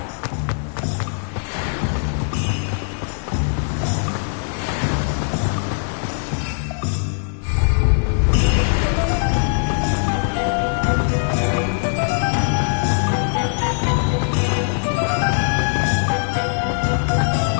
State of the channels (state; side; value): silent; right; digital silence